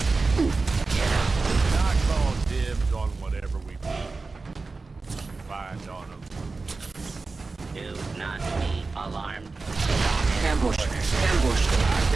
not calling dibs on whatever we find on them. Do not be alarmed. Ambush. Ambush. I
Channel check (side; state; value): left; quieter; 3.9 dB